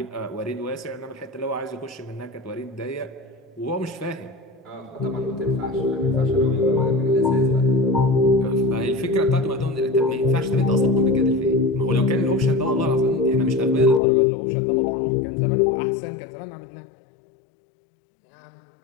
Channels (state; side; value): drops out; right; at 14.0 s